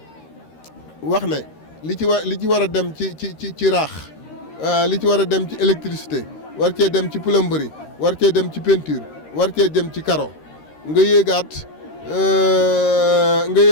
wax ne li ci war a dem ci raax li ci war a dem ci électricité war cee dem ci plomberie war cee dem ci peinture war cee dem ci carreau nga yéegaat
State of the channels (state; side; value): late; right; 13 ms